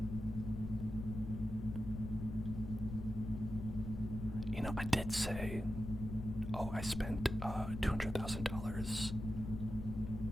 You know, I did say, I spent $200,000,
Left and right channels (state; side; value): noise; left; rumble, 6 dB below the sound